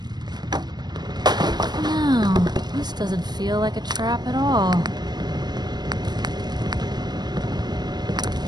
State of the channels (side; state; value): left; late; 0.20 ms